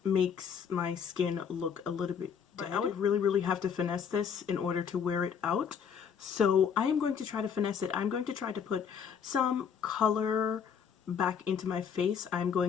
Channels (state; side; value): quieter; right; 7.2 dB